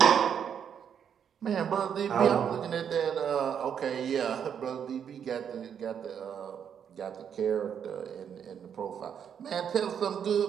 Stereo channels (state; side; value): quieter; left; 8.1 dB